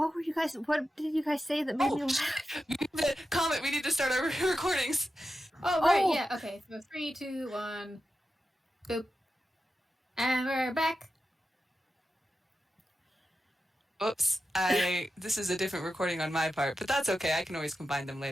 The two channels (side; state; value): both; normal; correlation 0.91